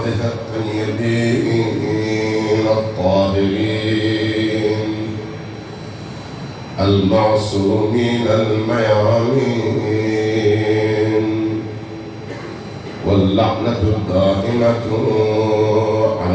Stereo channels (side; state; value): both; identical; correlation 1.00